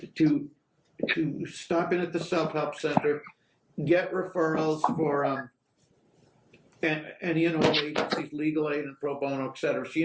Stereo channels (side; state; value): both; identical; correlation 1.00